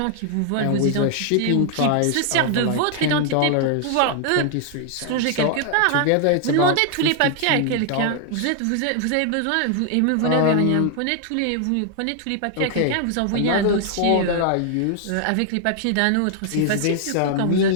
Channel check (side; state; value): both; different; correlation 0.00